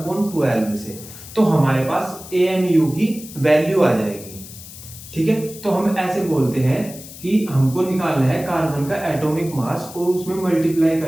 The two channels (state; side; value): noise; left; hiss, 15 dB below the sound